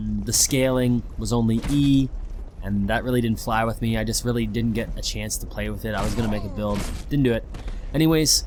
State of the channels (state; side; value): identical; both; correlation 1.00